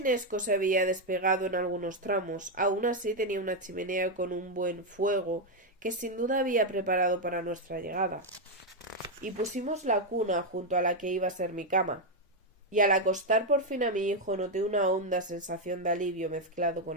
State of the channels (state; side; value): normal; both; correlation 0.03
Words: se había despegado en algunos tramos. Aún así tenía una chimenea con un buen fuego que sin duda había preparado para nuestra llegada. Y pusimos la cuna junto a la que iba a ser mi cama. Y al acostar por fin a mi hijo noté una honda sensación de alivio mezclado con